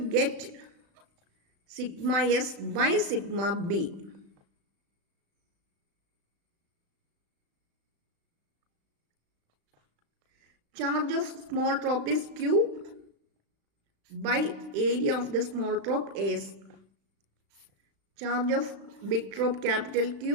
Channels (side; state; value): left; late; 36 ms